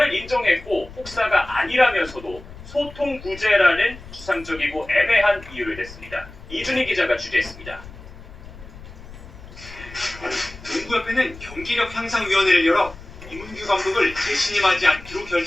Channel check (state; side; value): noise; left; rumble, 16 dB below the sound